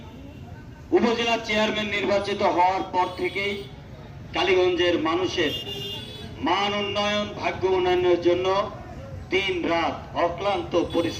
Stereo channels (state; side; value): identical; both; correlation 1.00